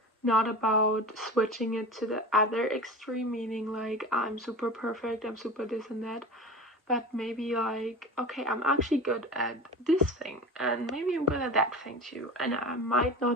not about switching it to the other extreme, meaning like I'm super perfect, I'm super this and that, but maybe like, okay, I'm actually good at this thing, and maybe I'm good at that thing too, and I might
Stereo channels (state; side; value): normal; both; correlation 0.32